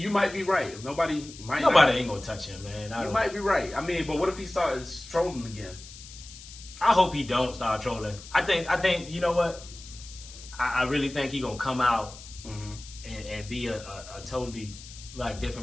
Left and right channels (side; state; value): left; noise; hiss, 16 dB below the sound